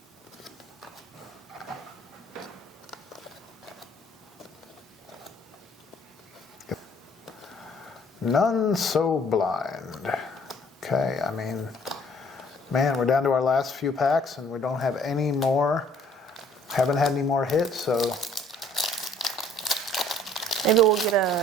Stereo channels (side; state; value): both; normal; correlation 0.59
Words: None so blind. Okay, I mean, man, we're down to our last few packs and we don't have any more, haven't had any more hits, so. Maybe we'll get